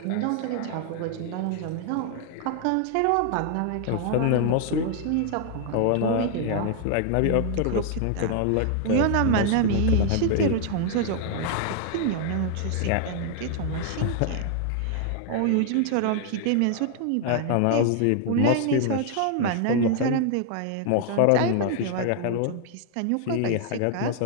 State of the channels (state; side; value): different; both; correlation 0.00